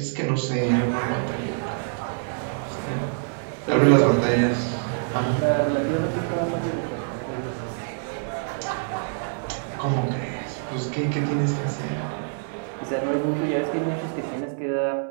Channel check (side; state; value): left; silent; 61 dB below the other